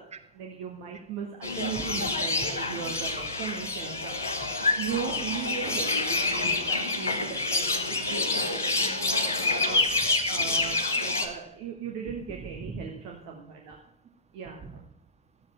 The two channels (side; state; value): both; inverted; correlation -0.36